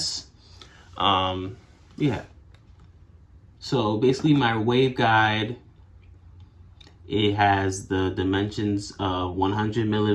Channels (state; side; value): identical; both; correlation 1.00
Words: Yeah, so basically my waveguide, it has the dimensions of 100